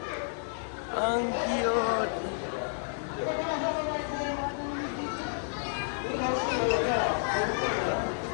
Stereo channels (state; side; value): silent; right; 57 dB below the other